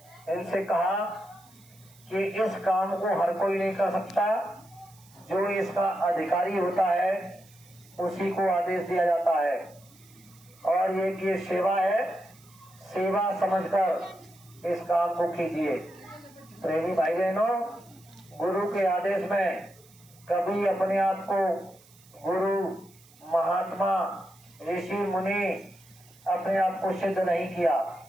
इनसे कहा कि इस काम को हर कोई नहीं कर सकता, जो इसका अधिकारी होता है उसी को आदेश दिया जाता है, और ये सेवा है, सेवा समझकर इस काम को कीजिए। प्रेमी भाई बहनों, गुरु के आदेश में कभी अपने आप को गुरु, महात्मा, ऋषि मुनि अपने आप को सिद्ध नहीं किया।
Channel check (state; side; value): noise; right; hiss, 27 dB below the sound